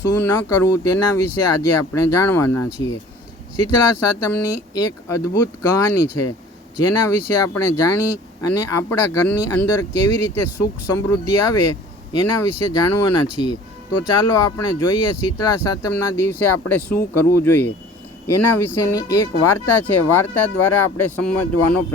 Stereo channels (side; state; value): both; normal; correlation 0.47